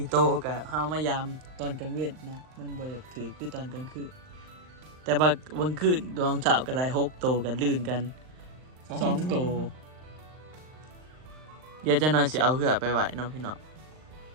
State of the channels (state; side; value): late; left; 39 ms